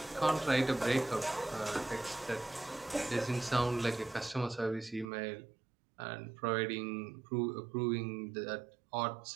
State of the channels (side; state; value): left; drops out; at 5.1 s